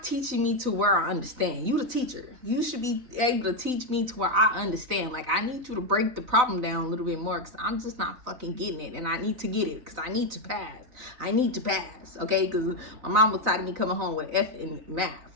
teaching me to where I understand. You the teacher. You should be able to teach me to where I understand. Like, I need you to break the problem down a little bit more because I'm just not fucking getting it. And I need to get it because I need to pass. Okay? Because my mom was tired of me coming home with an F in math.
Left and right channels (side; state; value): left; late; 4.0 ms